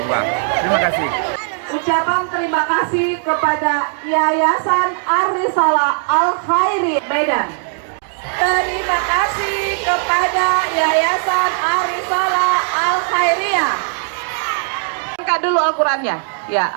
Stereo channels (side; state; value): left; silent; 66 dB below the other